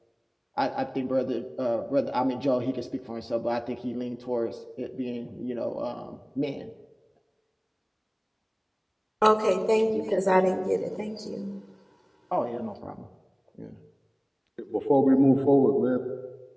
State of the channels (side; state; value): both; identical; correlation 1.00